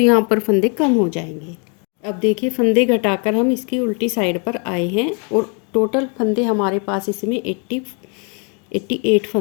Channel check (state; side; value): quieter; right; 36.3 dB